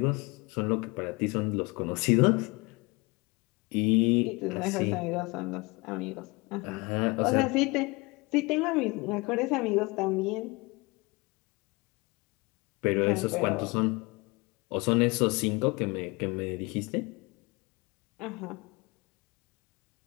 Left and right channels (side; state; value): right; quieter; 25.7 dB